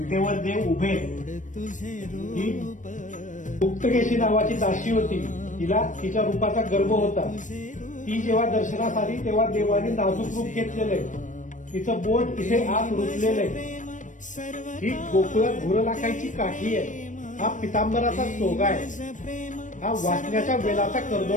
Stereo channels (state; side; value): late; right; 0.37 ms